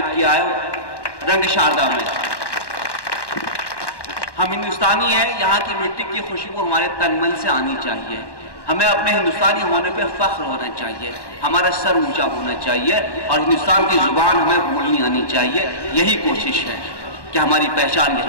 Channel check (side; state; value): right; late; 1.1 ms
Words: کیا ہے رنگ شاردا میں۔ ہم ہندوستانی ہیں، یہاں کی مٹی کی خوشبو ہمارے تن من سے آنی چاہیے، ہمیں اپنے ہندوستانی ہونے پہ فخر ہونا چاہیے، ہمارا سر اونچا ہونا چاہیے، اور ہندوستان کی زبان ہمیں بولنی آنی چاہیے۔ یہی کوشش ہے کہ ہماری پہچان